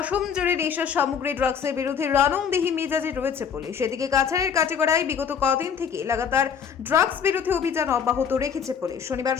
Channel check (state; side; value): quieter; right; 7.1 dB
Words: জুড়ে নেশার সামগ্রী ড্রাগসের বিরুদ্ধে রণংদেহী মেজাজে রয়েছে পুলিশ। এদিকে কাছাড়ের কাটিগড়ায় বিগত কদিন থেকে লাগাতার ড্রাগস বিরোধী অভিযান অব্যাহত রেখেছে পুলিশ। শনিবার